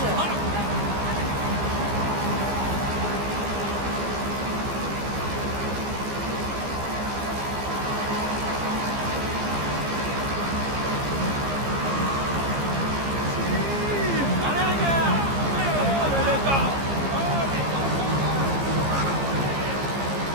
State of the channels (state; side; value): late; left; 15 ms